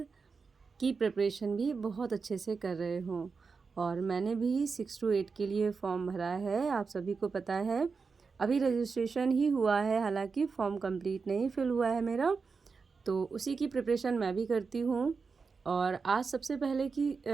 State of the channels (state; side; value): quieter; left; 4.9 dB